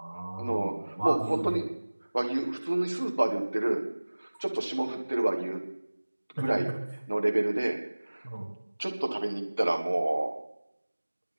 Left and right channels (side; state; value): both; inverted; correlation -1.00